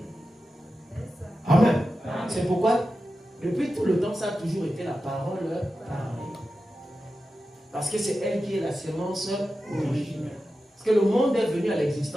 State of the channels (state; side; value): normal; both; correlation 0.92